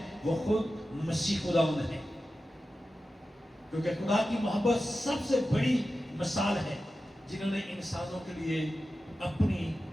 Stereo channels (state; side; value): normal; both; correlation 0.93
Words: وہ خود مسیح خداوند ہے. کیونکہ خدا کی محبت سب سے بڑی مثال ہے جنہوں نے انسانوں کے لیے اپنی